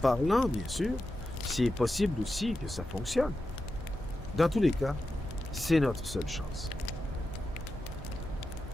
bien sûr, c'est possible aussi que ça fonctionne. Dans tous les cas, c'est notre seule chance.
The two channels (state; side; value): normal; both; correlation 0.90